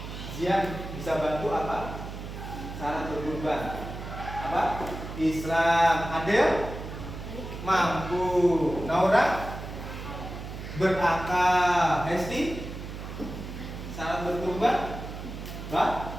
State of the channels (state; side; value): noise; right; hum, 9 dB below the sound